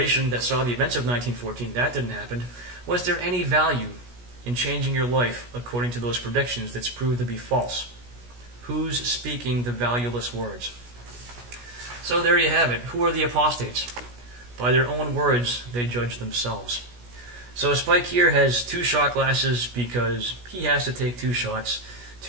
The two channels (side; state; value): left; late; 17 ms